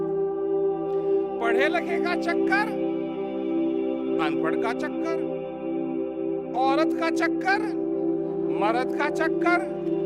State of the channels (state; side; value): noise; right; hum, 29 dB below the sound